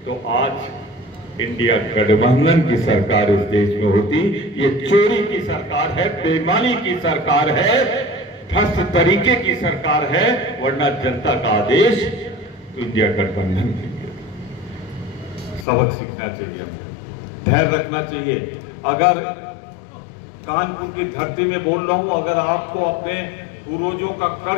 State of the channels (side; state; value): right; drops out; at 15.7 s